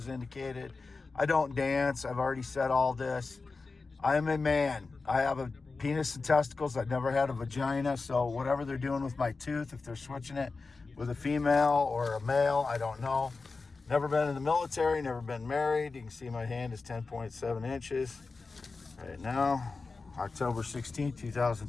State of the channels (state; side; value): quieter; right; 4.1 dB